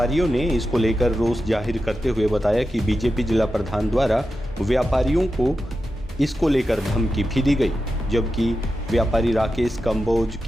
ने इसको लेकर रोष जाहिर करते हुए बताया कि बीजेपी जिला प्रधान द्वारा व्यापारियों को इसको लेकर धमकी भी दी गई, जबकि व्यापारी राकेश कंबोज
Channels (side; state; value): both; normal; correlation 0.90